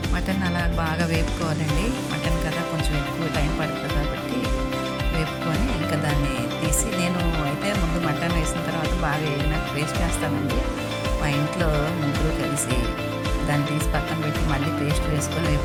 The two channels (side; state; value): both; identical; correlation 1.00